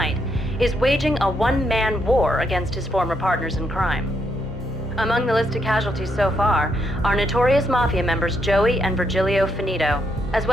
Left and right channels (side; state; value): both; normal; correlation 0.77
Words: is waging a one-man war against his former partners in crime. Among the list of casualties so far are notorious mafia members Joey and Virgilio Finito, as